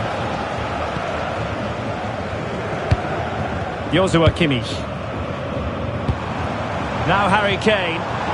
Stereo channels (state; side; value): identical; both; correlation 1.00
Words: Joshua Kimmich. Now Harry Kane.